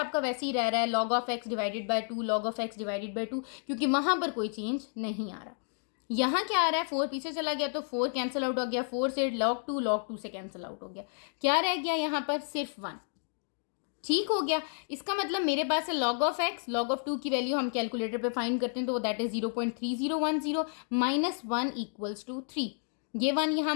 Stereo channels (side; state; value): right; silent; 57 dB below the other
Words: वैसे ही रह रहा है log of x divided bye 2 log of x divided bye 2, क्योंकि वहां पर कोई चेंज नहीं आ रहा। यहाँ क्या आ रहा है? 4 पीछे चला गया तो 4 कैंसिल आउट हो गया। 4 से log 2 से कैंसिल आउट हो गया। क्या रह गया यहाँ पर? सिर्फ 1। ठीक हो गया। इसका मतलब मेरे पास है log of x, log of 2 की वैल्यू हम कैलकुलेटर पे फाइंड करते हैं तो that is 0.3010 minus 1 equals to 3। ये 1 यहाँ